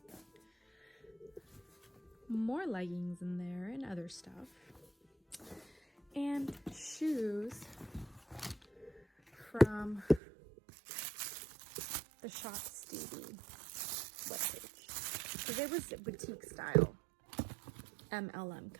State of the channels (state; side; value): drops out; left; at 10.2 s